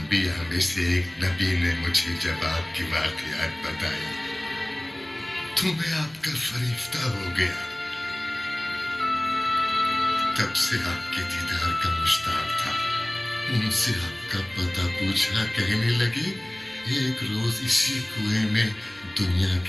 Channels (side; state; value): right; noise; hum, 28 dB below the sound